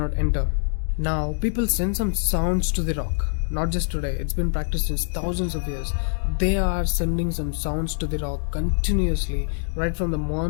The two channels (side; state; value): right; silent; 62 dB below the other